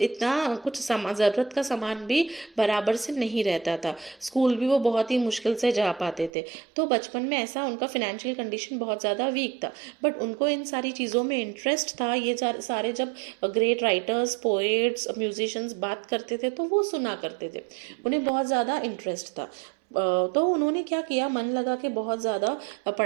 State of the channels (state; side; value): drops out; left; at 6.3 s